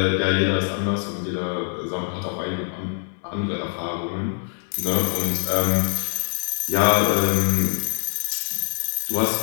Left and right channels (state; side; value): silent; right; 63 dB below the other